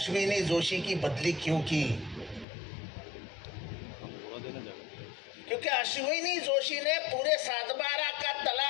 जोशी की बदली क्यों की? क्योंकि अश्विनी जोशी ने पूरे 7/12 का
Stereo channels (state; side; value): drops out; right; at 2.5 s